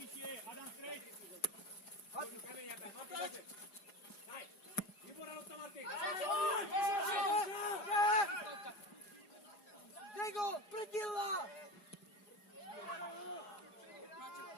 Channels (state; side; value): late; right; 4.8 ms